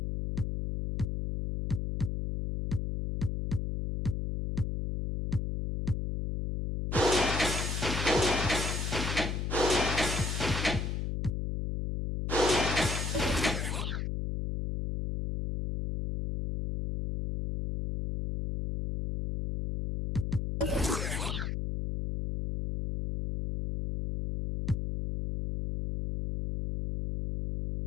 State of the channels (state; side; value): noise; left; hum, 2 dB below the sound